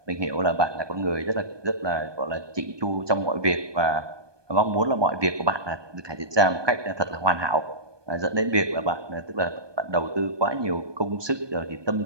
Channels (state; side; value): late; left; 1.2 ms